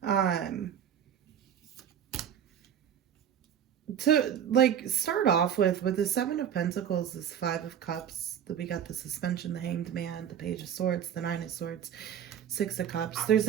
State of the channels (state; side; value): quieter; left; 9.1 dB